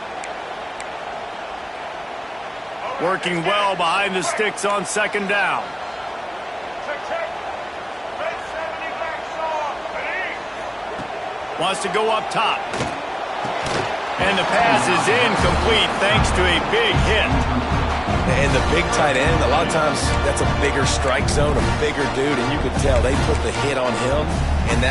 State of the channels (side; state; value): both; identical; correlation 1.00